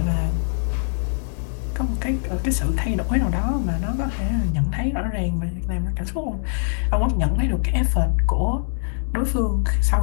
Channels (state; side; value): silent; right; digital silence